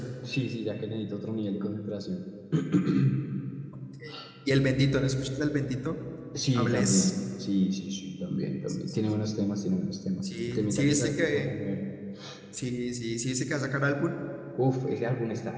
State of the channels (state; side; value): identical; both; correlation 1.00